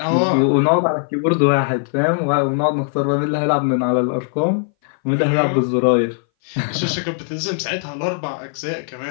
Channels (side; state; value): right; silent; 61 dB below the other